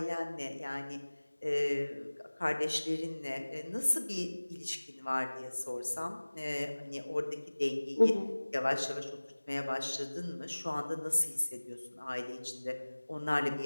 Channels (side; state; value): both; inverted; correlation -1.00